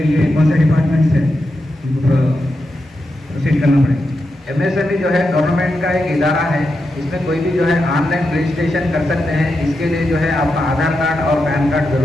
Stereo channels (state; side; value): normal; both; correlation 0.87